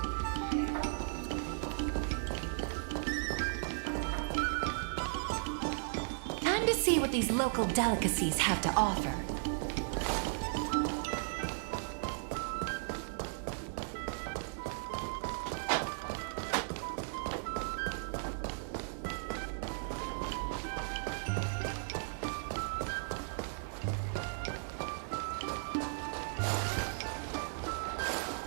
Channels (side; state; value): left; silent; digital silence